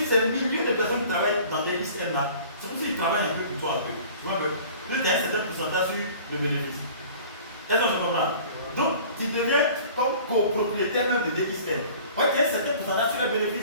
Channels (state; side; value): inverted; both; correlation -0.46